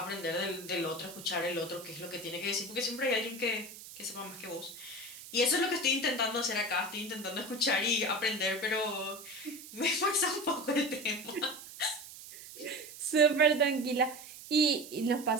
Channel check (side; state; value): right; noise; hiss, 14 dB below the sound